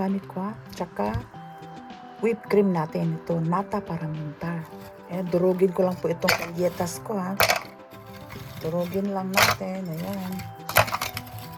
ko ha. Tsaka, whipped cream natin. Ito, nata para muntar. Durugin ko lang po itong galletas ko ha. Durugin lang natin. Ayan.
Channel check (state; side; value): identical; both; correlation 1.00